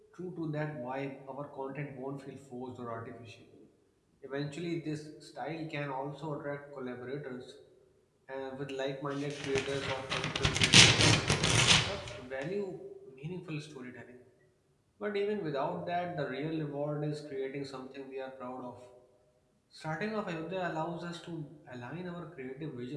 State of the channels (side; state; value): both; identical; correlation 1.00